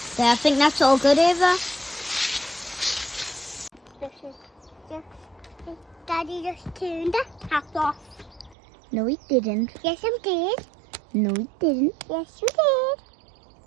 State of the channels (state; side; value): drops out; left; at 8.6 s